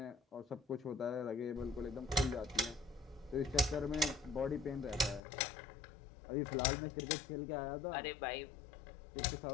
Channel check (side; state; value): right; drops out; at 5.2 s